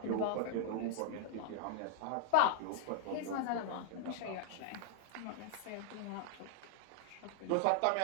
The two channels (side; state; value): both; different; correlation -0.01